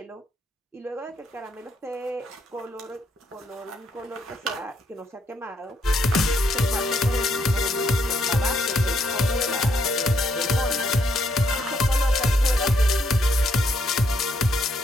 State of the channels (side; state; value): both; normal; correlation 0.74